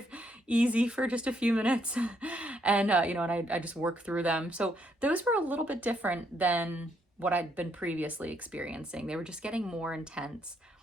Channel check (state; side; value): normal; both; correlation 0.73